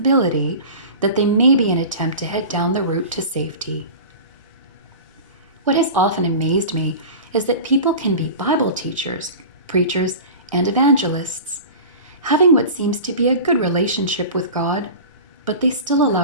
that they may be an attempt to head down the route to safety. What has often amazed me is that people can be Bible teachers, preachers, and evangelists, having what seems to be a good relationship with God, but they still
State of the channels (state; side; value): inverted; both; correlation -0.34